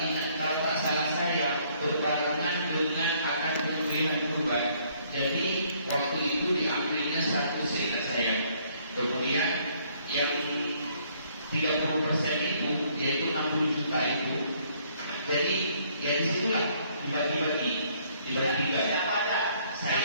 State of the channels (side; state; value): both; inverted; correlation -0.64